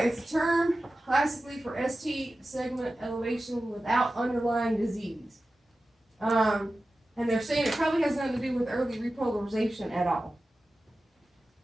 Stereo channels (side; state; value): both; normal; correlation 0.94